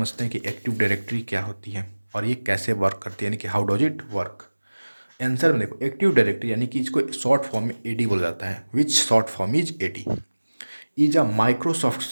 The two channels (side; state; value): both; inverted; correlation -1.00